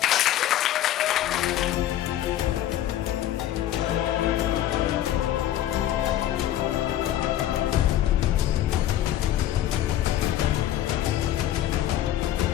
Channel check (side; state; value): right; quieter; 12.4 dB